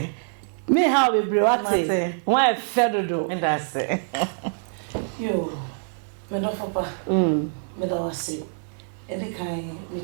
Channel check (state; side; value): silent; left; 62 dB below the other